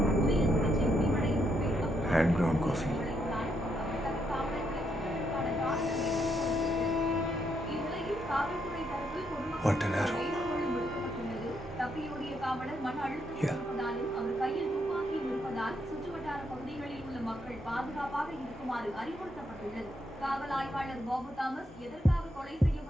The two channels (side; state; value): both; normal; correlation 0.77